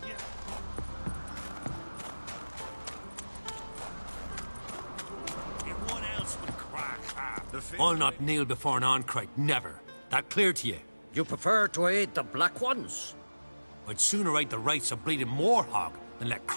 Yeah. Everyone else would crack half. I'll not kneel before an Oncrite, never. That clear to you? You prefer to aid the Black Ones? I'd sooner aid the rights of bleeding Moorhog than let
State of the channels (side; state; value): both; inverted; correlation -1.00